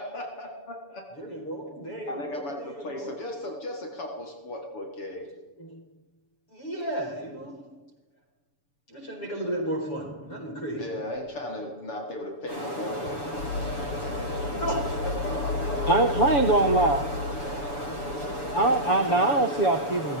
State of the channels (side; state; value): right; late; 7.0 ms